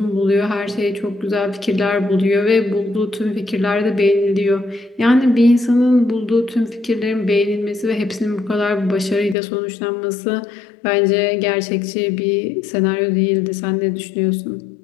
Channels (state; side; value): drops out; right; at 9.3 s